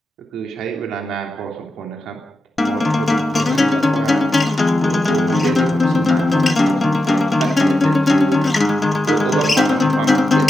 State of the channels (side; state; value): both; normal; correlation 0.89